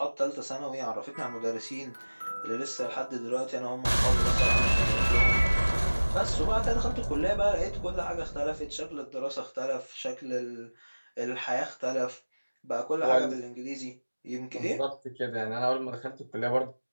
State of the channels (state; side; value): inverted; both; correlation -1.00